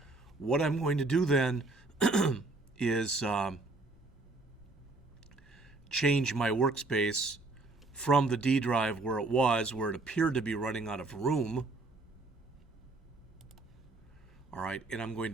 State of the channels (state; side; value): quieter; left; 3.2 dB